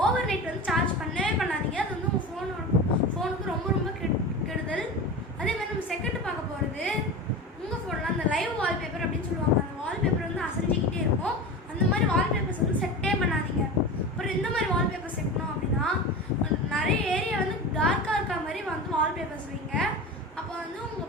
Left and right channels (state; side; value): normal; both; correlation 0.29